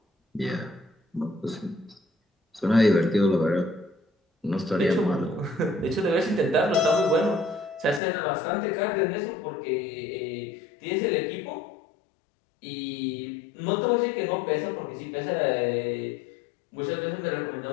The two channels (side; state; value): right; drops out; at 8.0 s